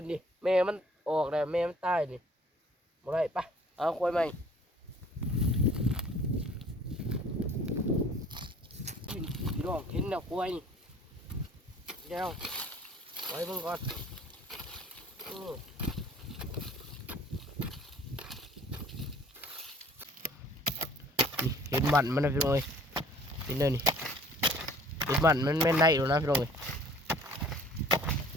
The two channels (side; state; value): both; normal; correlation 0.51